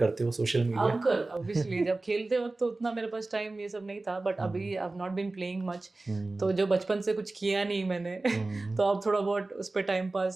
हो सोशल मीडिया? अब कर, ऑब्वियसली जब खेलते वक्त तो उतना मेरे पास टाइम ये सब नहीं था, बट अभी I have not been playing much, तो जो बचपन से कुछ किया नहीं मैंने तो अब थोड़ा बहुत उस पर time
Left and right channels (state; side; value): quieter; left; 3.2 dB